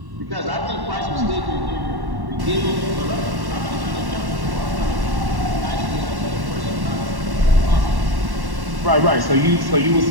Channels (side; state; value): left; late; 1.1 ms